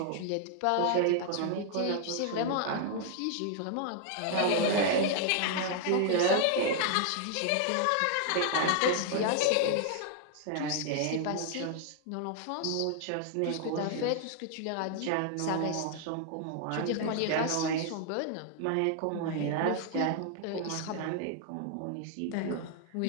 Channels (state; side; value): different; both; correlation 0.00